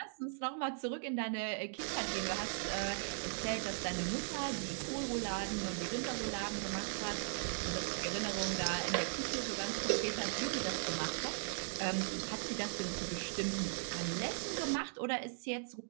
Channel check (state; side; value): silent; left; digital silence